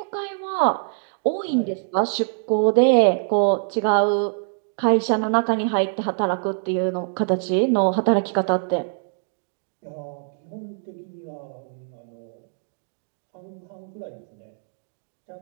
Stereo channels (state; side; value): silent; left; digital silence